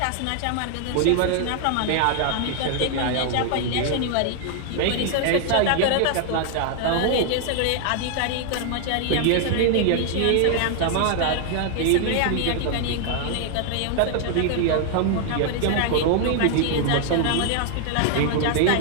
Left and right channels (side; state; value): both; different; correlation 0.00